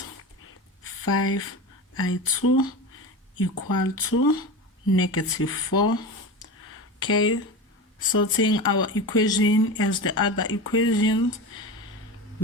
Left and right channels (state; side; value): normal; both; correlation 0.26